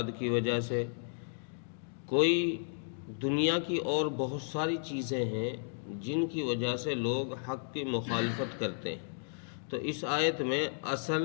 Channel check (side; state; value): right; silent; digital silence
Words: کی وجہ سے، کوئی دنیا کی اور بہت ساری چیزیں ہیں جن کی وجہ سے لوگ حق کی مخالفت کرتے ہیں. تو اس آیت میں اصل